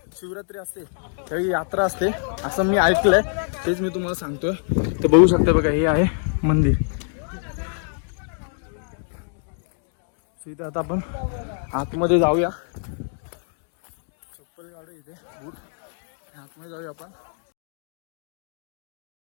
असते त्यावेळी यात्रा असते असं मी ऐकलंय, तेच मी तुम्हाला सांगतोय. तर बघू शकता बघा, हे आहे मंदिर. इथे आता आपण आतमध्ये जाऊया. चप्पल काढू इथे, बूट, आतमध्ये जाऊया आपण.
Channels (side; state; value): right; silent; 62 dB below the other